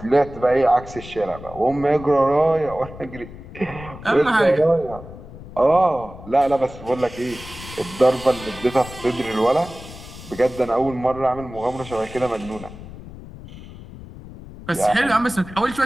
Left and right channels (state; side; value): noise; left; rumble, 15 dB below the sound